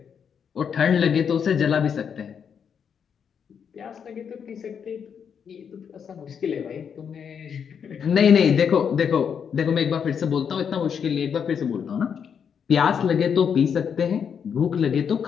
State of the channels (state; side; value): quieter; right; 7.3 dB